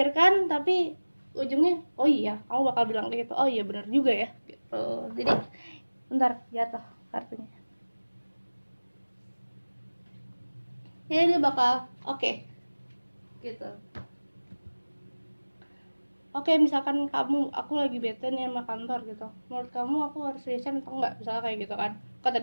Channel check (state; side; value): inverted; both; correlation -1.00